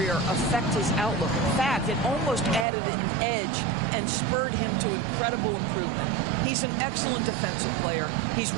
affect his outlook. In fact, it almost added an edge and spurred him to incredible improvement. He's an excellent defensive player. He's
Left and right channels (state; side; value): drops out; left; at 2.7 s